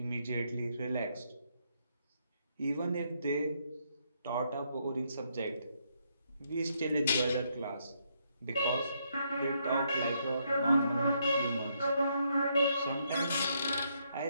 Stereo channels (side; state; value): both; inverted; correlation -0.75